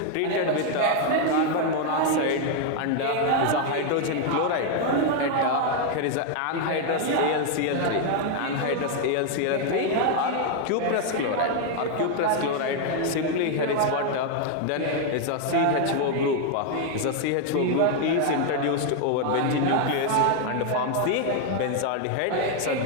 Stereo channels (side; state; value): both; different; correlation 0.00